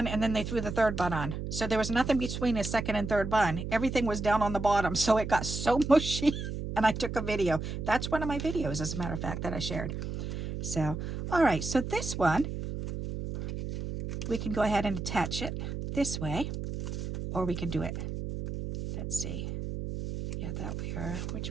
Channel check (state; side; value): noise; right; hum, 5 dB below the sound